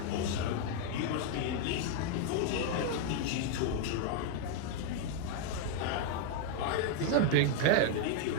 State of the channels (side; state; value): both; different; correlation 0.00